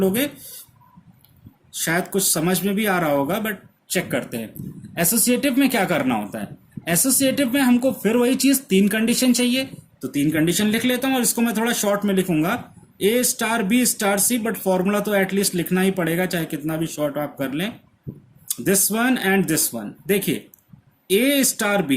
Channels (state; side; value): identical; both; correlation 1.00